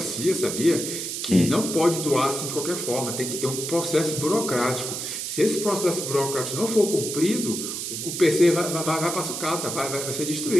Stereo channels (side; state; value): right; noise; hiss, 4 dB below the sound